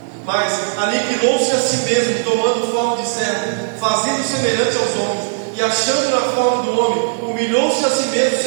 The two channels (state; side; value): silent; left; digital silence